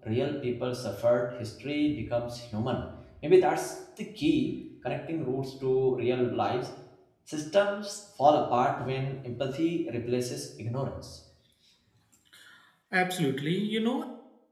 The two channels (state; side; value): identical; both; correlation 1.00